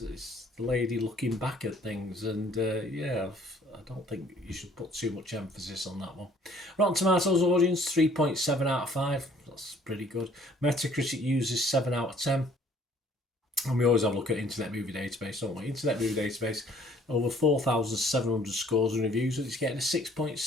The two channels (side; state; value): both; normal; correlation 0.58